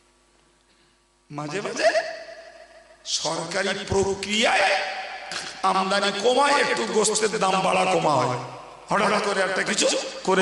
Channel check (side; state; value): both; identical; correlation 1.00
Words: মাঝে মাঝে সরকারি প্রক্রিয়ায় আমদানি কমায়, একটু গোশতের দাম বাড়া কমা হয়। হঠাৎ করে একটা কিছু